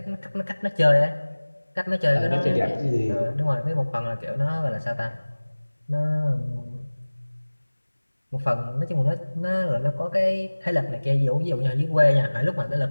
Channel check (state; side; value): inverted; both; correlation -1.00